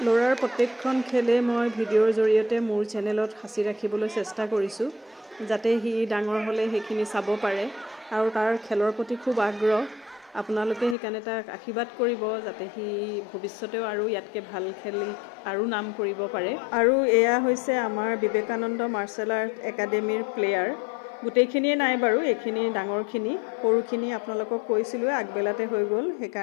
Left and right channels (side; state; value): right; drops out; at 11.0 s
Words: ল'ৰাৰ প্ৰত্যেকখন খেলে মই ভিডিঅ'ৰ জৰিয়তে মোৰ চেনেলত সাঁচি ৰাখিবলৈ চেষ্টা কৰিছোঁ যাতে সি ডাঙৰ হ'লে সেইখিনি চাব পাৰে আৰু তাৰ খেলৰ প্ৰতি খুব আগ্ৰহ আপোনালোকে সেইকাৰণে তাক আশীৰ্বাদ কৰিব যাতে সি ভৱিষ্যতেও আৰু ইয়াতকৈ ভাল খেলি আৰু নাম কৰিব পাৰে আৰু এয়া হৈছে আমাৰ বিবেকানন্দ মাৰ্চেল আৰ্ট একাডেমীৰ প্লেয়াৰ গোটেইখিনিয়ে নাই বাৰু এইখিনি ডাঙৰখিনি সৰুখিনি আপোনালোকক কৈছিলোঁ আগবেলাতে হৈ গ'ল